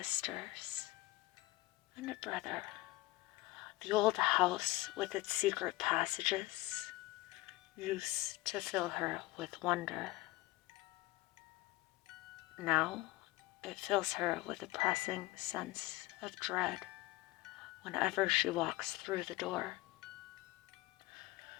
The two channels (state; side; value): quieter; right; 19.2 dB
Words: and a brother. The old house with its secret passages used to fill her with wonder. Now it fills her with a pressing sense of dread whenever she walks through the door.